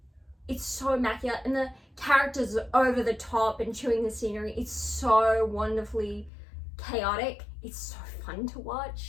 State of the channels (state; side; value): drops out; right; at 6.3 s